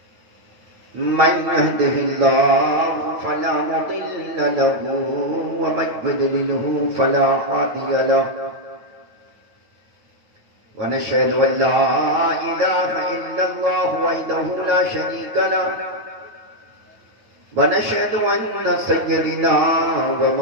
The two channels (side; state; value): left; late; 9.1 ms